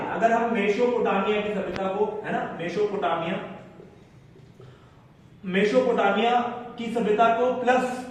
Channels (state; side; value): identical; both; correlation 1.00